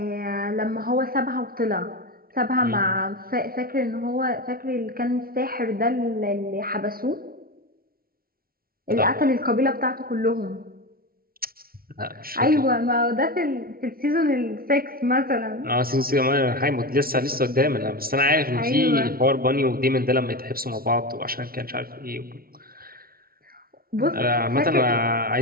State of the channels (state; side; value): late; left; 0.43 ms